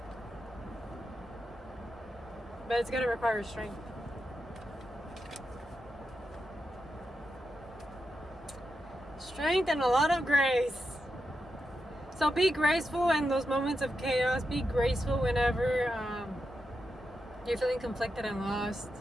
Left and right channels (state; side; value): normal; both; correlation 0.87